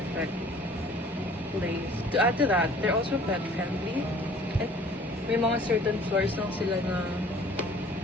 place. To add to that, they're also pet friendly. At may mga certain floors lang sila na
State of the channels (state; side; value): normal; both; correlation 0.52